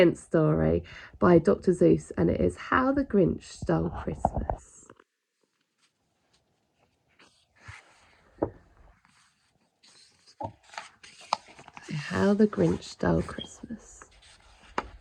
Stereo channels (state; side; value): identical; both; correlation 1.00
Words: story by Dr. Seuss, and it is How the Grinch Stole Christmas. How the Grinch Stole Christmas